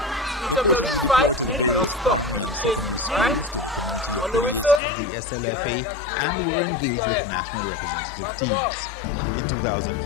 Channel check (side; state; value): right; drops out; at 4.8 s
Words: The coaches were deployed to the various primary and secondary schools, to the community affiliates of the SLFA, and were engaged with national representative teams. In